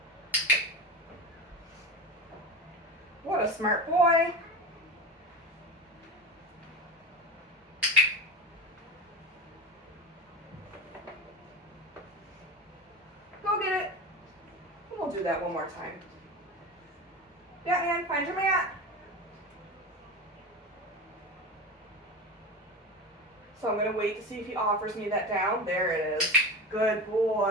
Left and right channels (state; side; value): normal; both; correlation 0.25